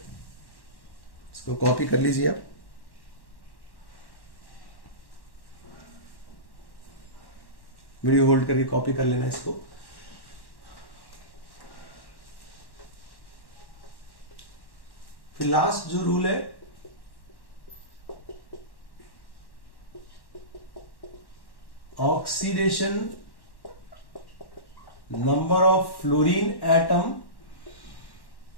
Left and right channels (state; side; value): late; right; 1.1 ms